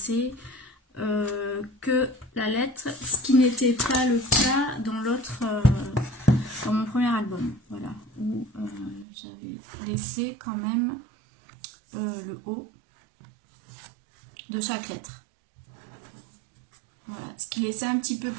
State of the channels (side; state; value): left; drops out; at 9.1 s